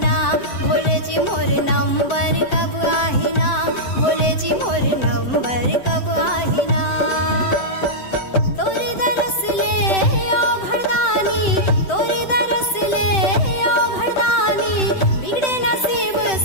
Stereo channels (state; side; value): late; right; 7.8 ms